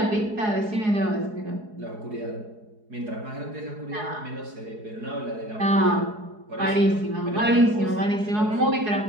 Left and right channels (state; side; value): late; left; 4.7 ms